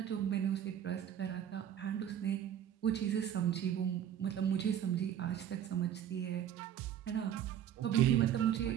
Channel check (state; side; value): quieter; left; 10.0 dB